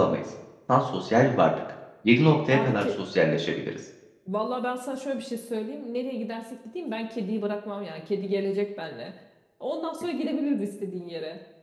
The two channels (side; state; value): both; identical; correlation 1.00